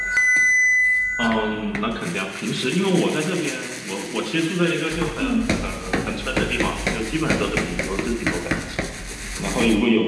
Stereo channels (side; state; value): both; identical; correlation 1.00